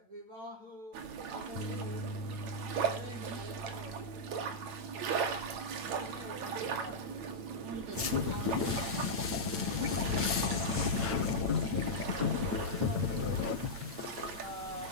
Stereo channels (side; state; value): left; late; 8.9 ms